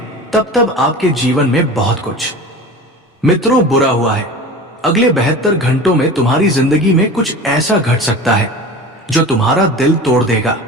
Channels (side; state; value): both; normal; correlation 0.35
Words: तब तब आपके जीवन में बहुत कुछ मित्रों बुरा हुआ है। अगले 72 घंटों में तुम्हारी जिंदगी में कुछ ऐसा घट सकता है जो तुम्हारा दिल तोड़ देगा,